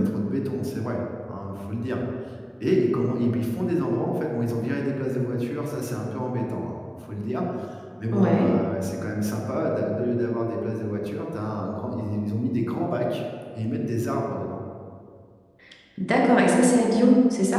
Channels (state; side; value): identical; both; correlation 1.00